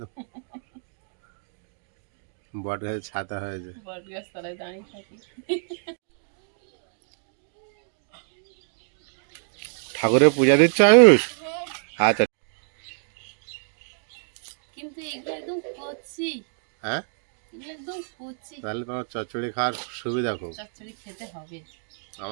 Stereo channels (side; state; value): left; silent; digital silence